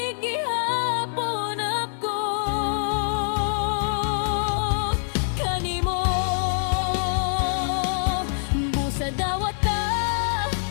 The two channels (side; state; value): right; silent; digital silence